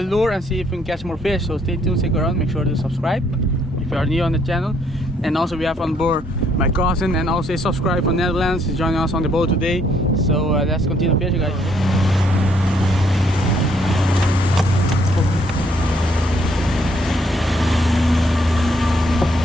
lure and see if we can catch more fish. So stay tuned, stick around, make sure to subscribe if you are new on the channel. And also we have on board my cousin and also a subscriber from Netherlands. He's joining us on the boat today. So let's continue fishing, guys.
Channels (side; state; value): both; normal; correlation 0.68